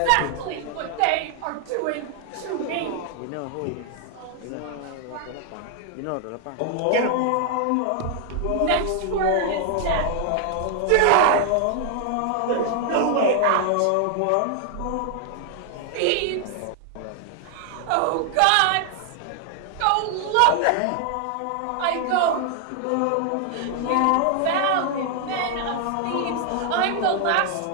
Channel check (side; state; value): both; different; correlation 0.00